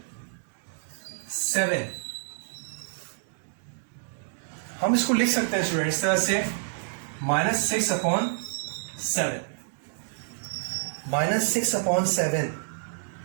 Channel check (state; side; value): silent; left; digital silence